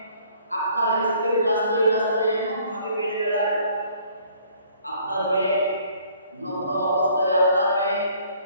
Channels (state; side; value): inverted; both; correlation -0.59